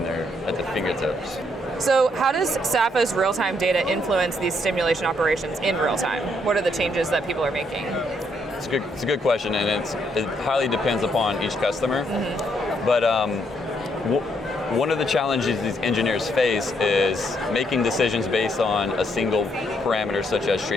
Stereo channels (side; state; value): both; normal; correlation 0.73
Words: there at the fingertips. So how does SAFA's real-time data influence these stimulation operations in real time? What are the changes that people are making? It's a good question, and it highly depends upon each customer. But one of the challenges these engineers face is making decisions based on a single parameter, such as